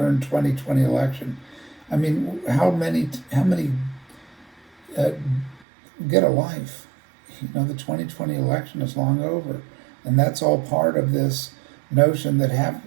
2020 election. I mean, how many get a life? The 2020 election is long over, and that's all part of this notion that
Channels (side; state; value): left; drops out; at 5.7 s